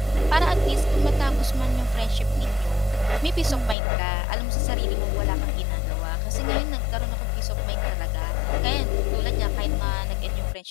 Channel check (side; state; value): right; drops out; at 3.8 s